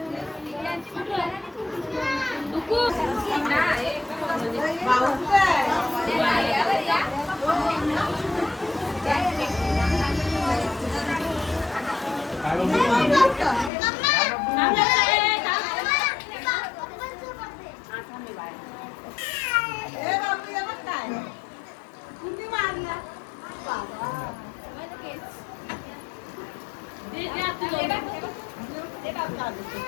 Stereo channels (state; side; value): drops out; right; at 13.7 s